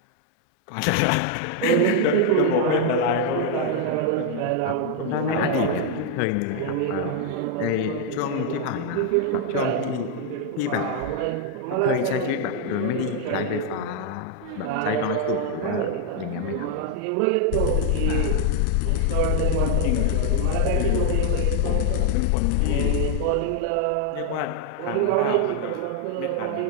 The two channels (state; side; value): different; both; correlation 0.00